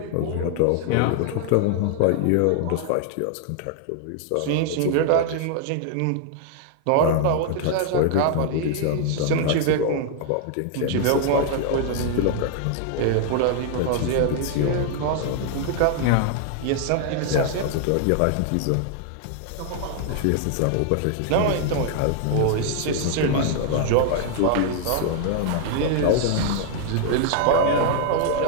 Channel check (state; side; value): different; both; correlation 0.00